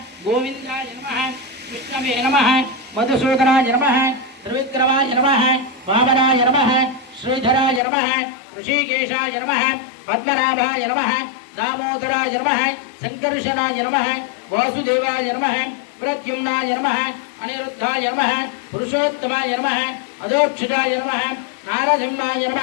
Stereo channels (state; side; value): drops out; right; at 7.8 s